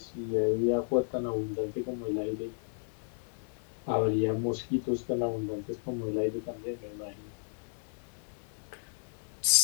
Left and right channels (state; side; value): silent; right; 56 dB below the other